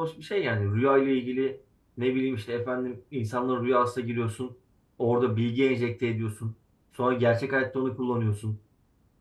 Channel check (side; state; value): both; identical; correlation 1.00